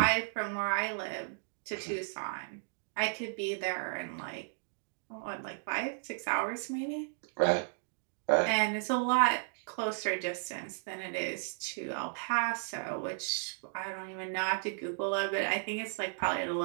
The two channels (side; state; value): left; silent; digital silence